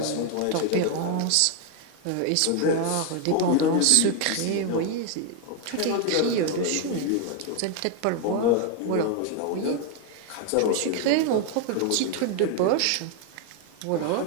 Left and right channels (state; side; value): different; both; correlation 0.01